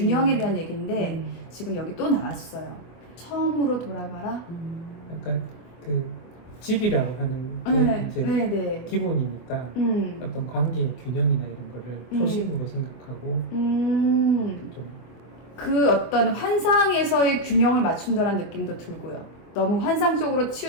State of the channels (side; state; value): right; late; 24 ms